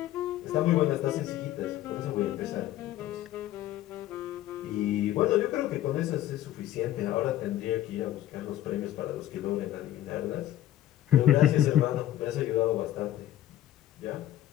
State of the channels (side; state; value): right; quieter; 13.1 dB